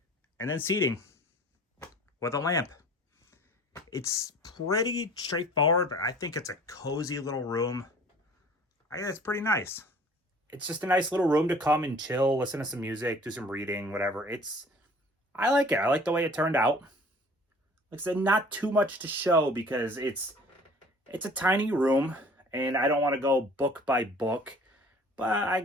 And then seating with a lamp. It's pretty straightforward, but I think it's a cozy little room. I think it's pretty nice. It's just a nice little room to come and chill, listen to some music, do some reading, whatever. I like it. I like the way it turned out. Like I said, not too much to show because it's a tiny room, and I don't want to go book by book, but I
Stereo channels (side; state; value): both; normal; correlation 0.49